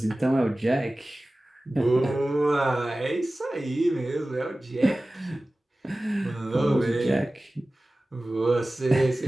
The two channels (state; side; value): normal; both; correlation 0.97